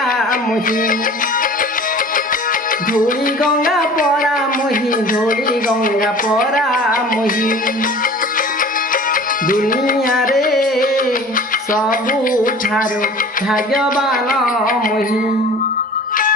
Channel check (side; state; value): both; normal; correlation 0.43